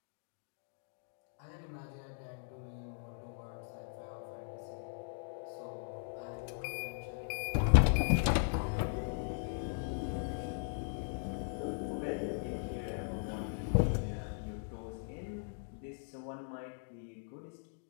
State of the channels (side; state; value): right; silent; digital silence